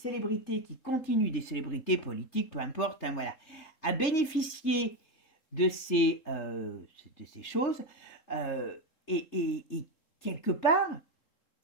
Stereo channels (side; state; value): right; late; 3.7 ms